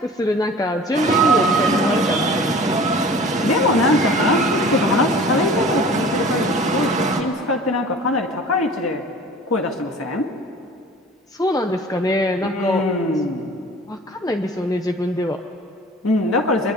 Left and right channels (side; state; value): both; normal; correlation 0.44